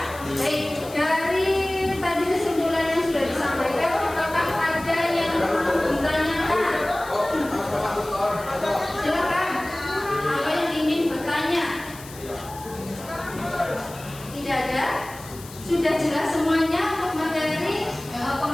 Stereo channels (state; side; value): noise; left; hiss, 17 dB below the sound